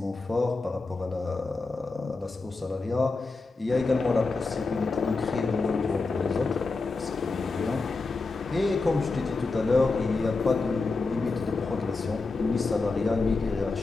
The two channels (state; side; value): quieter; right; 3.8 dB